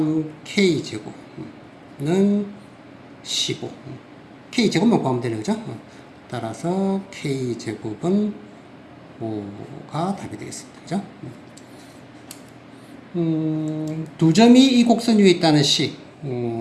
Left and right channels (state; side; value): identical; both; correlation 1.00